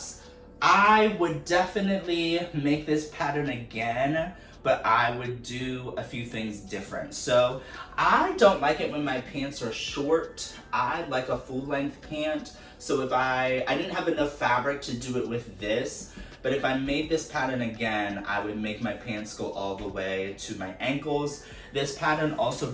I would definitely make this pattern again, but I would do a few things different. So I don't like it when my pants are short. I like a full length pant. So if I didn't have enough fabric to do it with this, but if I made this pattern again, I would make my pants go all the way to my ankles. This pattern also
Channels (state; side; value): identical; both; correlation 1.00